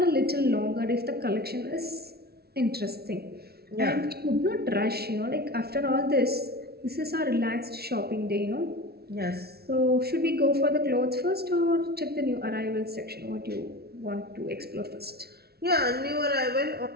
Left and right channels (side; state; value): left; late; 0.45 ms